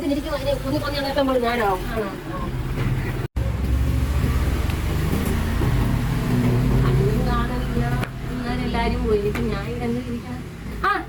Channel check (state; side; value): identical; both; correlation 1.00